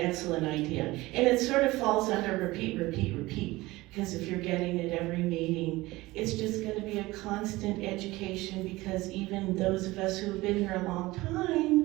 idea. And it sort of falls under repeat, repeat, repeat. Because if you're getting it every meeting, it's just going to be a constant education, because even those of us who have been here a long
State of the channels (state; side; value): quieter; left; 19.8 dB